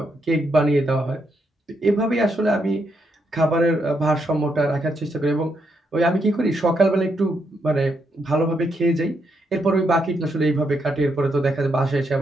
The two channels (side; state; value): both; normal; correlation 0.79